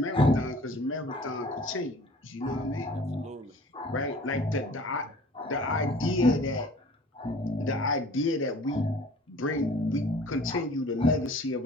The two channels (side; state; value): both; normal; correlation 0.48